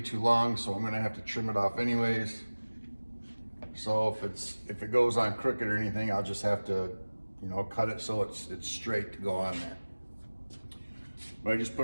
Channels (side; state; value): both; inverted; correlation -1.00